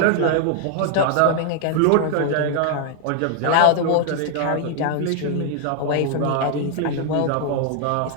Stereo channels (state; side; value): different; both; correlation 0.00